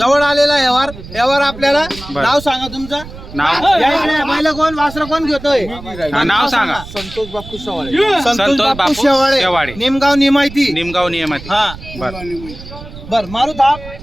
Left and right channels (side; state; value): right; noise; rumble, 15 dB below the sound